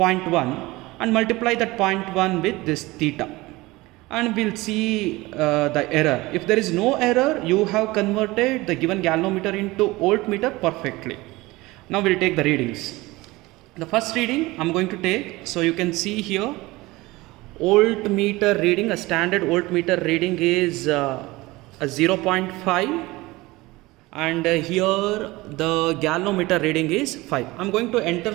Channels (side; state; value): left; quieter; 20.7 dB